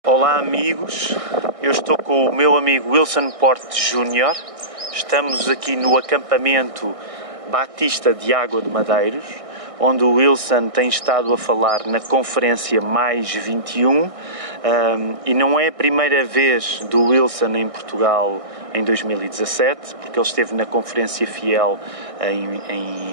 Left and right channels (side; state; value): left; late; 1.6 ms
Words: Olá amigos, eu estou com o meu amigo Wilson Porte Júnior. Estamos aqui no acampamento Batista de Água de Madeiros, onde o Wilson tem estado a falar na conferência Mais 21, e não é a primeira vez do Wilson em Portugal em 2017, porque ele esteve na Conferência Fiel